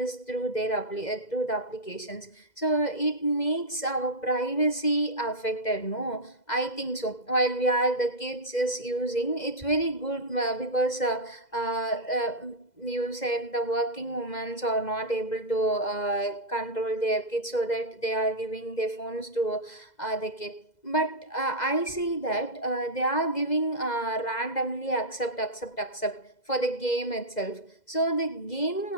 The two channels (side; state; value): right; late; 2.0 ms